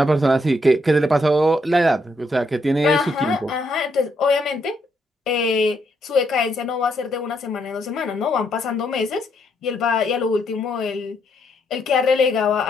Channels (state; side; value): normal; both; correlation 0.75